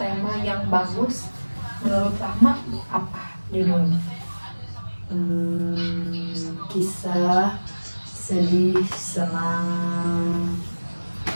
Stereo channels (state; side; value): inverted; both; correlation -1.00